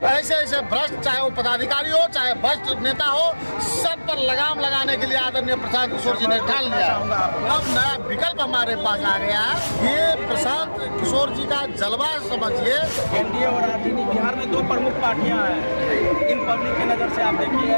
ऐसे ऐसे भ्रष्ट, चाहे वो पदाधिकारी हो चाहे भ्रष्ट नेता हो, सब पर लगाम लगाने के लिए आदरणीय प्रशांत किशोर जी ने ठान लिया। अब नया विकल्प हमारे पास आ गया। ये प्रशांत किशोर जी का जलवा समझिए। एनडीए और आरजेडी बिहार में दो प्रमुख पार्टियां हैं। इन पब्लिक की नज़र से आप देखिए,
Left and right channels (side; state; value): both; inverted; correlation -1.00